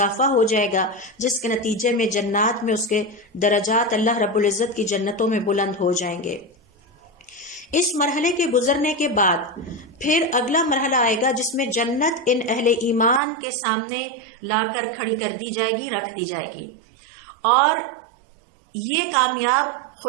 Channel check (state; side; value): drops out; left; at 13.2 s